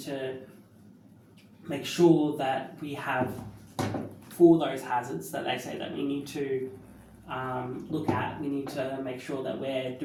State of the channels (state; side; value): identical; both; correlation 1.00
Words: to make sure that we have, for those hazards that they say that we need to look at, we need to make sure that we're